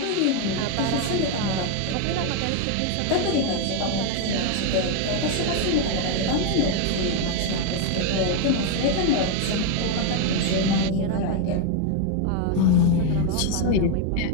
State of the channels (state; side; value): different; both; correlation 0.01